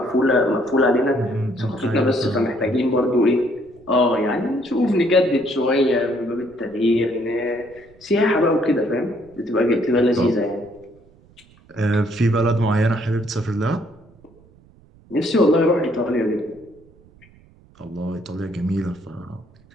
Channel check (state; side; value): noise; right; rumble, 28 dB below the sound